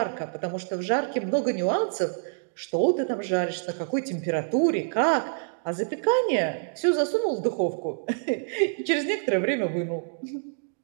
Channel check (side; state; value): left; silent; digital silence